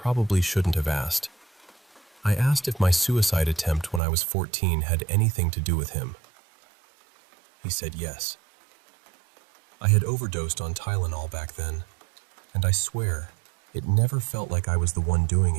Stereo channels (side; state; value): left; drops out; at 4.0 s